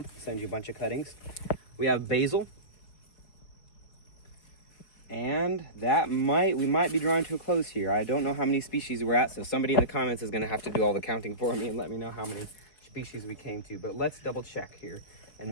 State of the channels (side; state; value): right; late; 4.6 ms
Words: I'll send you a bunch of cuttings. We have basil. And we might be drawing to a close here. I don't know how many species we're at, so somebody in the comments is going to have to do all the counting for me and let me know how many species we came to. But let's double check here and